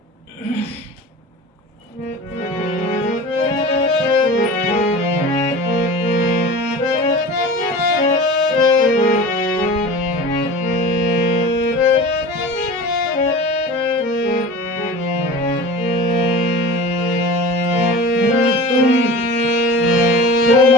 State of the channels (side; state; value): both; normal; correlation 0.36